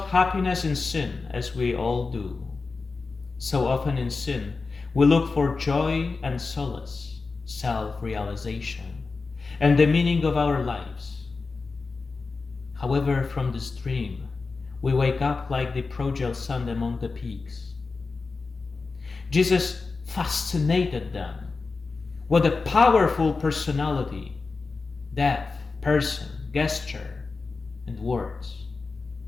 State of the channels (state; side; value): quieter; right; 4.2 dB